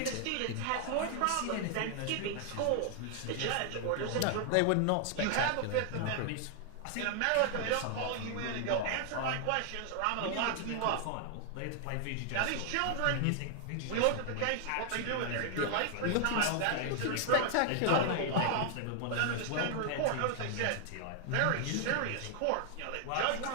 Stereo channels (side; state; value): both; different; correlation 0.00